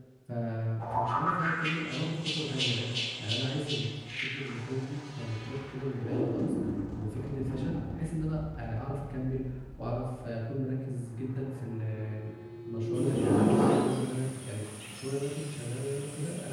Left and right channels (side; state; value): both; identical; correlation 1.00